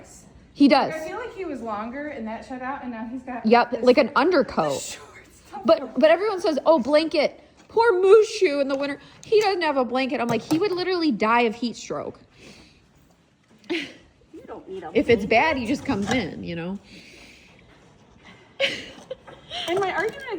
He does. I feel like he was longer and that shed out, and now he's got. Yep, this like an undercoat. shorts. But everyone says, oh, blanket. Poor Mushu in the winter. He doesn't have a blanket. I'm like, he would literally die of heat stroke. You don't need a If it's bad, he just comes in, you know? And my argument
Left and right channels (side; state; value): both; identical; correlation 1.00